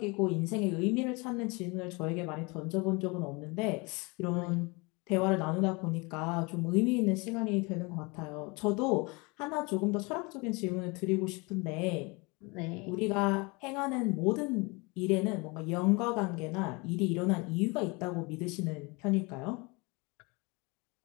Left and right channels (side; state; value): right; quieter; 27.8 dB